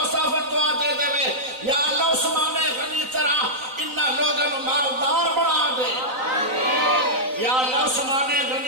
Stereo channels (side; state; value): left; late; 3.9 ms